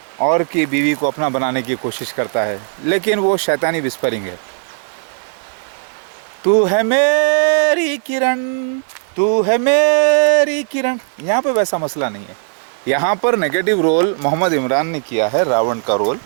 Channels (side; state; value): left; silent; 65 dB below the other